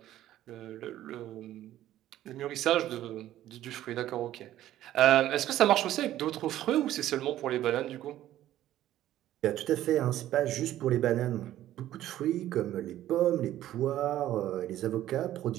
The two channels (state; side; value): quieter; left; 13.3 dB